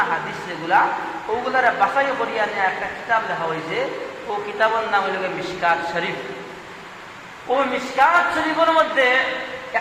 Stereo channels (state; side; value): identical; both; correlation 1.00